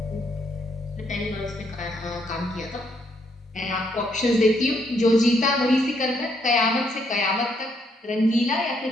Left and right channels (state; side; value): normal; both; correlation 0.73